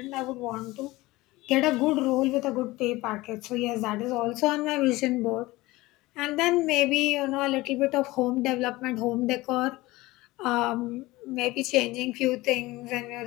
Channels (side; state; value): right; quieter; 19.8 dB